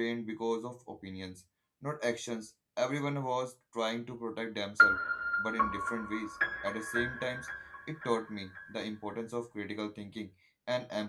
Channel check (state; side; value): identical; both; correlation 1.00